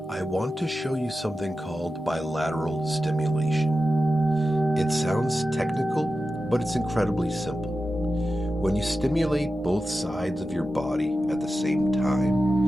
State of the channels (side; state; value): both; normal; correlation 0.92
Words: I want to show you something called bilateral stimulation. It sounds technical, but it's incredibly simple. When you stimulate both sides of your body at the same